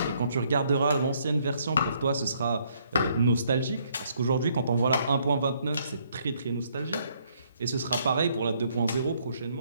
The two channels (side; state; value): both; inverted; correlation -0.69